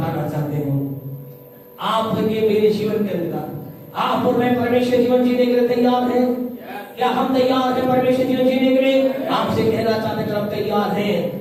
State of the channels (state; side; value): identical; both; correlation 1.00